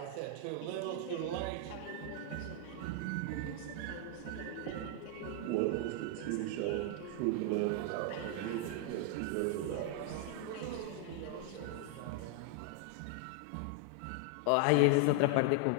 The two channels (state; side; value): different; both; correlation 0.00